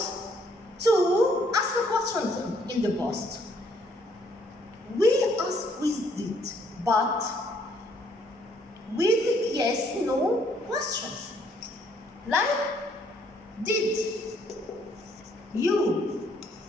to ask the questions in the past. We ask with did, but with yes, no questions. Like, did you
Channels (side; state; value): both; normal; correlation 0.66